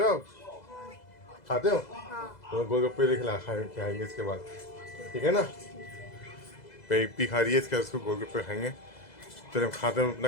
आप? खाते हो? तो गोलगप्पे लेके खाएंगे इसके बाद, ठीक है ना। इप्पी खा रही है, इसके बाद उसको गोलगप्पे खाएंगे। तो जब खाते हैं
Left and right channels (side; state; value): right; late; 2.0 ms